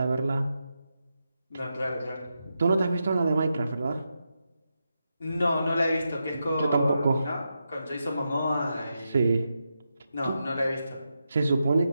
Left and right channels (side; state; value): both; inverted; correlation -0.87